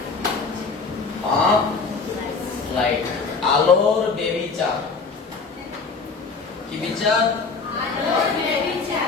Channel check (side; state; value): right; quieter; 4.6 dB